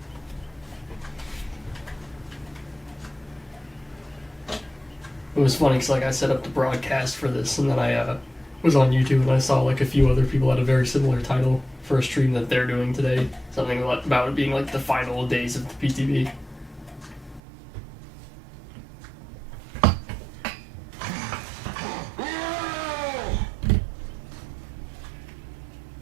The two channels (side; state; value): left; drops out; at 17.4 s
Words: It was funny because I set up the broadcast for this, and then I was on YouTube and I saw like a few other people had a very similar title for a stream that they're doing today. Something about it being like the final days of the PTB.